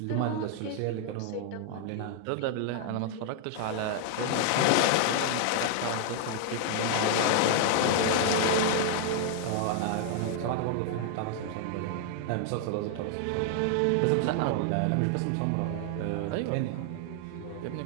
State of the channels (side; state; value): both; different; correlation 0.00